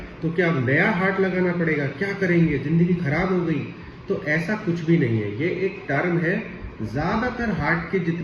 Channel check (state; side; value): identical; both; correlation 1.00